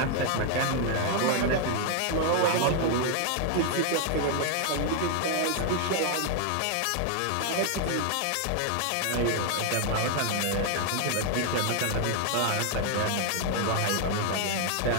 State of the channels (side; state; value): both; different; correlation 0.00